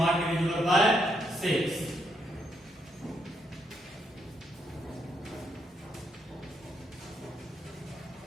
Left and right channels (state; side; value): normal; both; correlation 0.77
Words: divisible by 6.